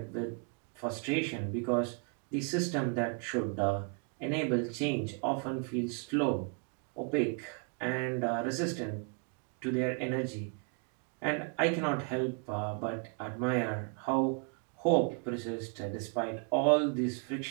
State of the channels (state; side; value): quieter; left; 38.7 dB